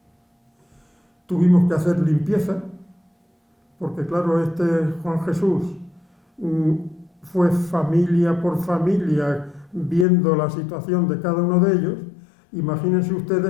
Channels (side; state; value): right; drops out; at 10.1 s